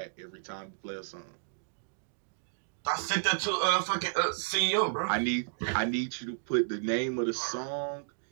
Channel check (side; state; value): left; silent; digital silence